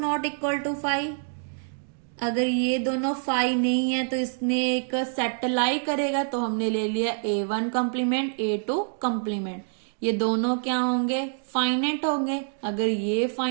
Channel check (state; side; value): silent; left; digital silence